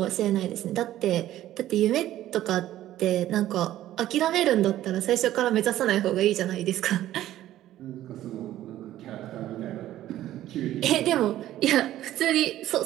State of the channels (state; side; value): quieter; left; 13.6 dB